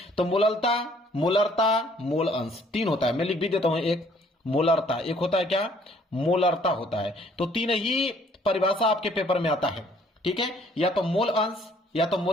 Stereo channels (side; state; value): both; normal; correlation 0.61